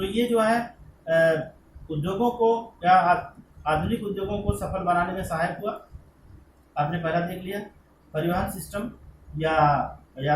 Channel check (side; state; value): both; identical; correlation 1.00